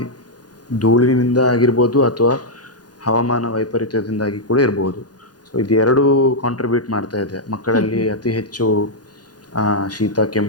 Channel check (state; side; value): late; right; 0.69 ms